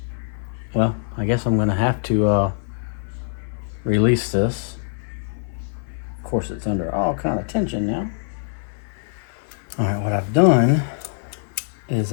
well, I guess I'm gonna have to release this. Of course, it's under all kind of tension now. All right, what I've done is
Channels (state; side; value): silent; right; 57 dB below the other